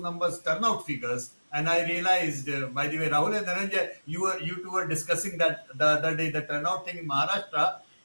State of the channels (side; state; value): both; inverted; correlation -1.00